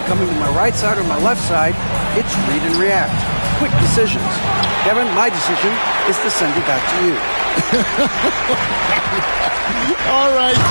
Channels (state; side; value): inverted; both; correlation -1.00